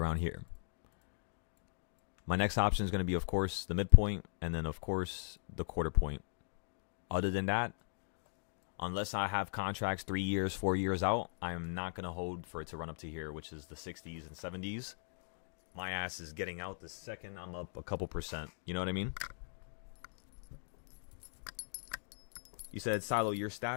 here. My next option is going to be, of course, the midpoint, and then, of course, the quarter point. Other than that, unless I have contracts 3 years, 4 years out, I'm not going to hold for it to run up to here, which is the 60s and 70s. My ass is getting out the second I'm up a couple percent. You know what I mean? You said, Silo, your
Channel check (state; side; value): silent; right; digital silence